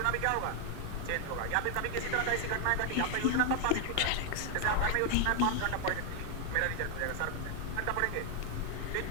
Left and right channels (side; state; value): both; different; correlation 0.00